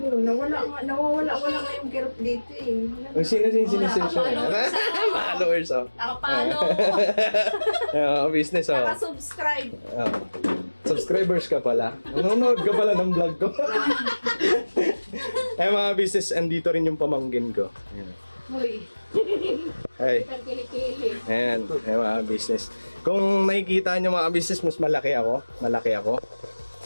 nawawala nga yung kirot dito eh. Ang sinisensya followers, oh. Nakapalo! Business, oh. Naka-subscribe. Subscribers ka pala. Nanonood ka pala ng vlog ko. Ay, mga business, andito rin yung pamangkin ko. Uy, Ay, ang kilikili. ayan, ay mga business. Kung nakikita nyo mga business, mas malaki ako. Malaki ako.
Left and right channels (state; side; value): inverted; both; correlation -1.00